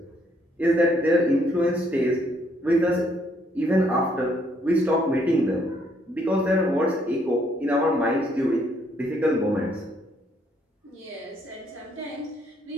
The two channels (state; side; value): normal; both; correlation 0.69